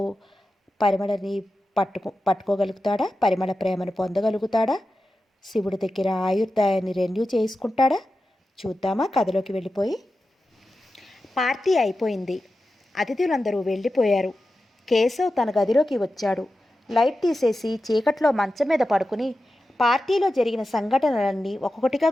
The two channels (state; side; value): normal; both; correlation 0.92